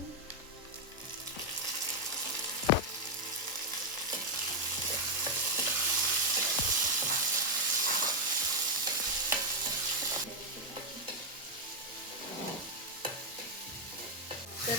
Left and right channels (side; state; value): both; normal; correlation 0.01